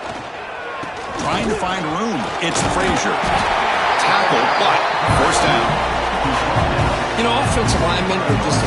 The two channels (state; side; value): identical; both; correlation 1.00